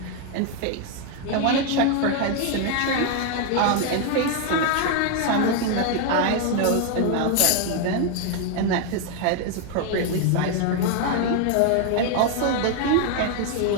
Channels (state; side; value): different; both; correlation 0.01